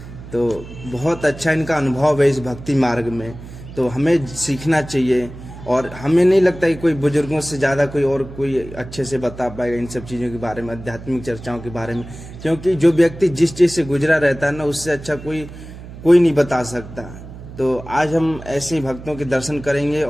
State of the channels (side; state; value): right; noise; hum, 14 dB below the sound